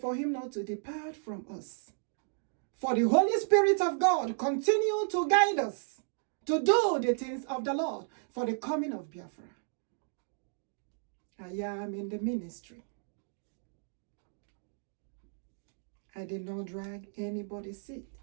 him not to depart from us. For the Holy Spirit of God continue to guide us to do the things of the Lord for the coming of Biafra. I am in the ministry. I did not drag anybody's seat.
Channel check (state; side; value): silent; left; digital silence